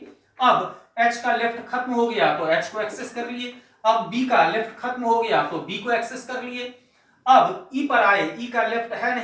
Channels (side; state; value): both; identical; correlation 1.00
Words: अब एच का लेफ्ट खत्म हो गया तो एच को एक्सेस कर लिए। अब बी का लेफ्ट खत्म हो गया तो बी को एक्सेस कर लिए। अब ई पर आए, ई का लेफ्ट है